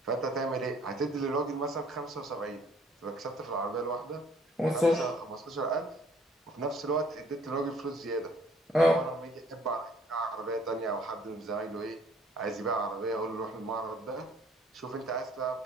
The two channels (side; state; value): both; normal; correlation 0.59